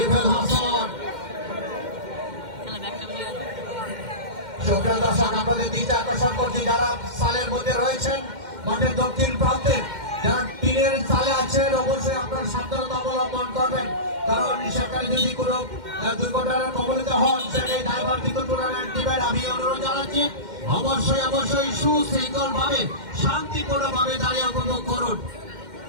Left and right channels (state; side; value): late; left; 2.1 ms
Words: হাসান। সুপ্রিয় দর্শক, আপনাদের দৃষ্টি আকর্ষণ করছি যারা সালের মধ্যে রয়েছেন মাঠের দক্ষিণ প্রান্তে, যারা টিনের চালে আছেন অবশ্যই আপনার সাবধানতা অবলম্বন করবেন, কারণ সেখানে যদি কোনো দুর্ঘটনার কবলিত হন সেটাই দায়ভার কিন্তু টুর্নামেন্ট টিমের। আমি অনুরোধ জানাচ্ছি অবশ্যই সুশৃঙ্খল ভাবে শান্তিপূর্ণ ভাবে দাঁড়িয়ে উপভোগ করুন।